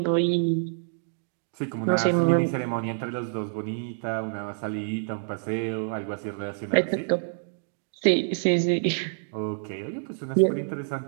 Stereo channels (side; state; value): left; silent; digital silence